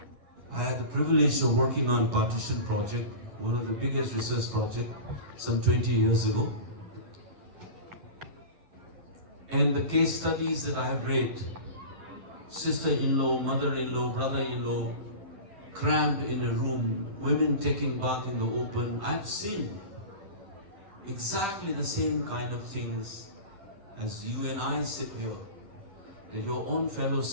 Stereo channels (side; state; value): left; late; 10 ms